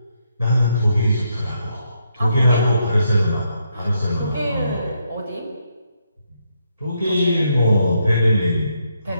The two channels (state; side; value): inverted; both; correlation -0.77